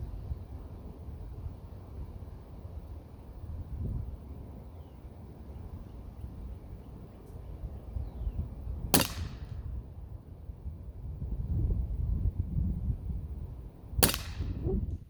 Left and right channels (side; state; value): both; identical; correlation 1.00